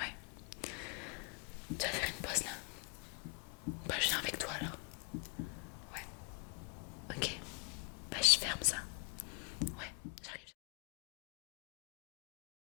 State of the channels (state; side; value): quieter; right; 33.1 dB